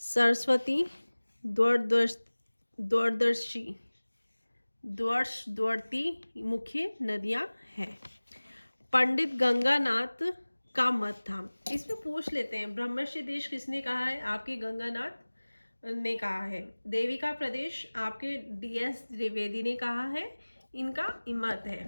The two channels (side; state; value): both; inverted; correlation -1.00